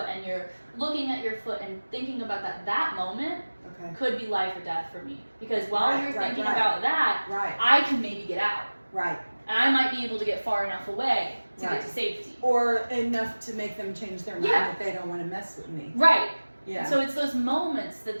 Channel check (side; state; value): both; inverted; correlation -1.00